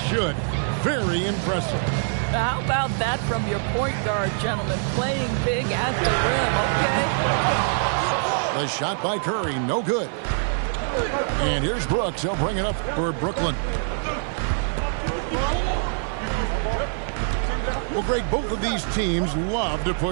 Very impressive. How about that from your point guard, gentlemen? Playing big at the rim, okay? The shot by Curry, no good. And here's Brooks. He'll bring it up for Brooklyn. Well, Greg, both of these teams love to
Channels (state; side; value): silent; left; 57 dB below the other